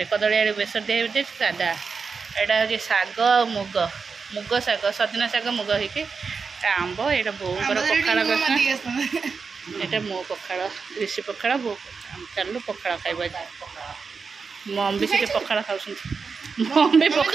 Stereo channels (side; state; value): left; quieter; 5.1 dB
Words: कदली आलू बेसर दे सादा एटा हूँ शाग मुग मुग शाग सजना शाग मुग होगी आंब एटा बोर पखाड़ ଏଇଟା ମୋ ପଖାଳ ଋଷି ପଖାଳ ବୋଉ ଚାଲୁ ପଖାଳ ଖାଇବା ମମ୍ ବି ସେଠି ପଖାଳ ଖାଉଛନ୍ତି ମମ୍ ବି